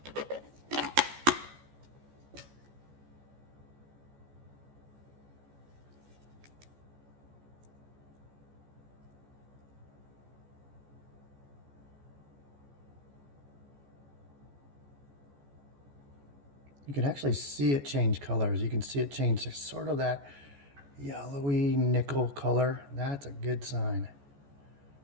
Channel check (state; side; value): late; left; 14 ms